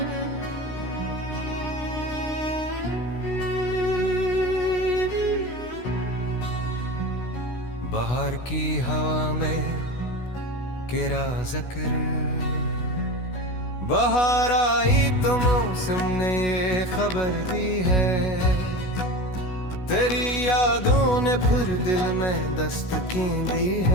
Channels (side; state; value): right; late; 16 ms